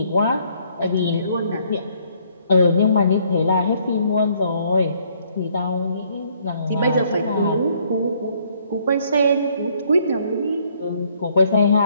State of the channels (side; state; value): both; inverted; correlation -0.66